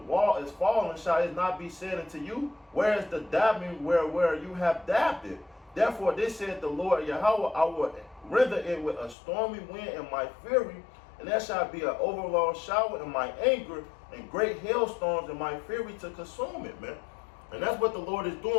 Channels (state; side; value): drops out; right; at 9.2 s